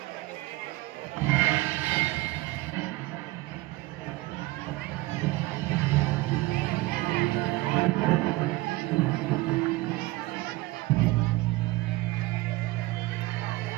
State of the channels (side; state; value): left; quieter; 19.6 dB